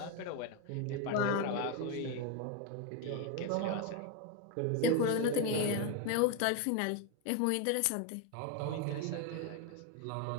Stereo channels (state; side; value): different; both; correlation 0.02